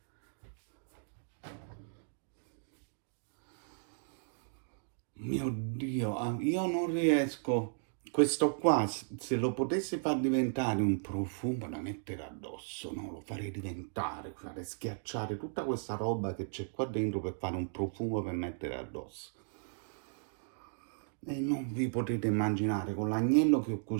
Mio Dio, io non riesco. Questo qua, se lo potessi far diventare un profumo da mettere addosso, no? Lo farei diventare, farei schiacciare tutta questa roba che c'è qua dentro per fare un profumo per mettere addosso. E non vi potete immaginare, con l'agnello che ho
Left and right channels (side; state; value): left; silent; digital silence